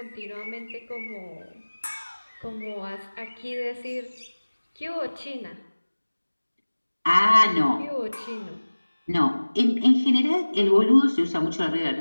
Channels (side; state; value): both; inverted; correlation -1.00